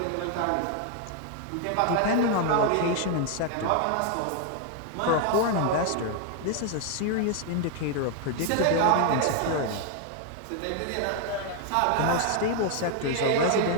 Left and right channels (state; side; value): different; both; correlation 0.01